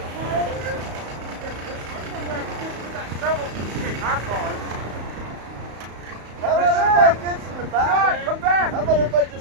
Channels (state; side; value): late; left; 34 ms